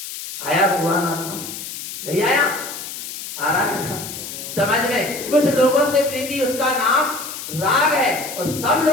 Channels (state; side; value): noise; left; hiss, 9 dB below the sound